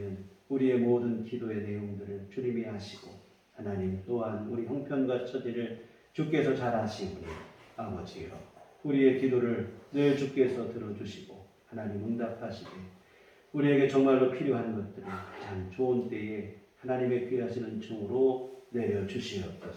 우리의 모든 기도의 내용들을 주님이 하시고 하나님 또한 우리 형편과 처지를 주께서 잘 아시오니 아버지여 우리의 기도를 늘 주께서 들어주시고 하나님 응답하시되 우리에게 정말로 필요한 것들을 가장 좋은 때에 하나님의 귀하시는 종으로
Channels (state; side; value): identical; both; correlation 1.00